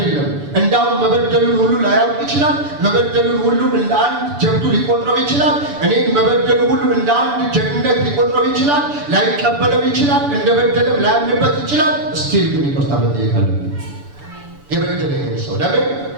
እንዳውም መበደሉን ሁሉ ላያውቅ ይችላል። መበደሉን ሁሉ እንደ አንድ ጀብዱ ሊቆጥረው ይችላል። እኔን መበደሉ ሁሉ እንደ አንድ ጀግንነት ሊቆጥረው ይችላል። ላይቀበለው ይችላል። እንደ በደለም ላያምንበት ይችላል። ስቲል ግን ይቅርታ መጠየቅ አለብን። የበደለኝን ሰው ለምን?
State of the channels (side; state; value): left; late; 6.9 ms